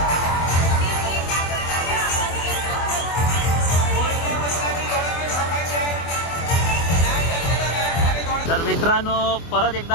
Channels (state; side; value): late; right; 24 ms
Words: तर मित्र मित्रांनो परत